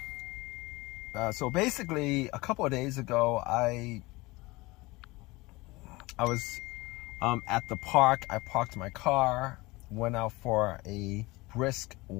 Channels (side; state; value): right; quieter; 22.2 dB